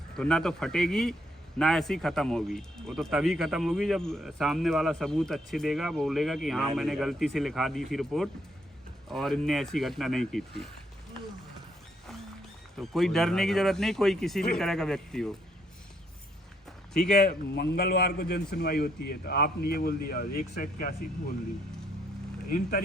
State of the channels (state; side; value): normal; both; correlation 0.72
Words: तो ना तो फटेगी ना ऐसी ख़त्म होगी। वो तो तभी ख़त्म होगी जब सामने वाला सबूत अच्छे देगा, बोलेगा कि हाँ मैंने गलती से लिखा दी थी रिपोर्ट और इनने ऐसी घटना नहीं की थी। तो कोई डरने की ज़रूरत नहीं, कोई किसी भी तरह का व्यक्ति हो। ठीक है, मंगलवार को जन सुनवाई होती है, तो आपने ये बोल दिया 181 बोल दी। इन